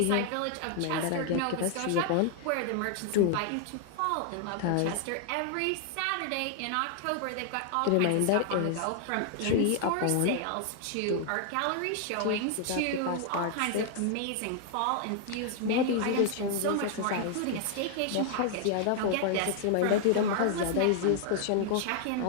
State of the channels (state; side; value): different; both; correlation 0.00